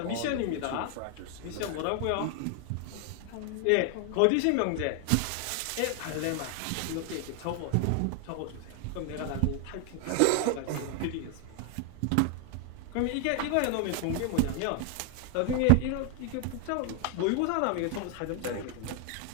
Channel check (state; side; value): different; both; correlation 0.01